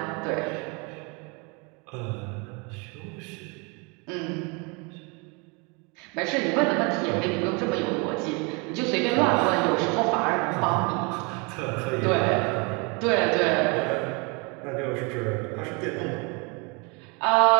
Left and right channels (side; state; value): left; quieter; 30.8 dB